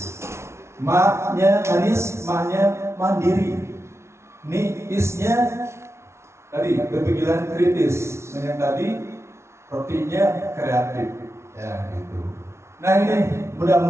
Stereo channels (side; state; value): left; late; 0.13 ms